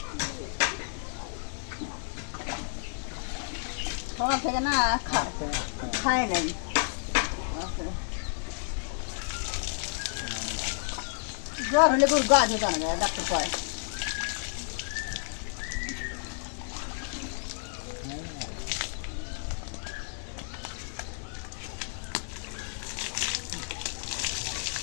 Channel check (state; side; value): silent; right; digital silence